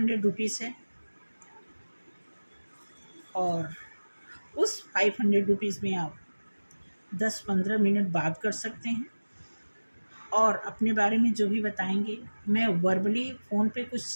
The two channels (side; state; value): both; inverted; correlation -1.00